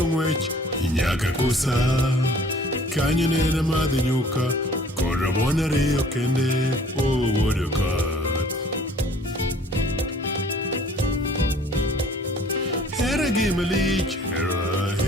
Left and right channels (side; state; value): both; normal; correlation 0.53